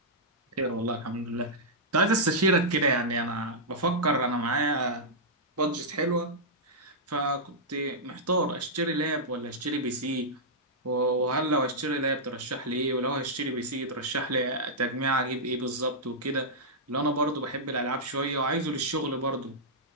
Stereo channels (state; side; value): normal; both; correlation -0.10